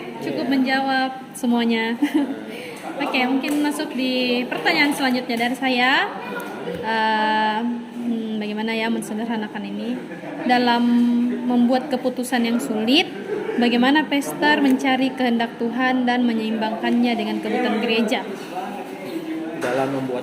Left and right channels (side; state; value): both; identical; correlation 1.00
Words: cukup menjawab semuanya. Oke, mungkin masuk di pertanyaan selanjutnya dari saya. Bagaimana ya mensederhanakan ini dalam membuat keputusan yang sulit? Bagaimana pastor mencari kehendak Tuhan dan menyeimbangkannya dengan kebutuhan gereja? Dalam